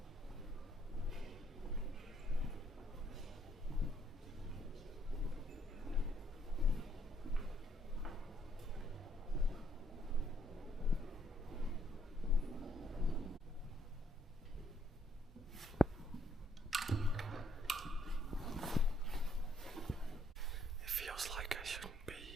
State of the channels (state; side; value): normal; both; correlation 0.69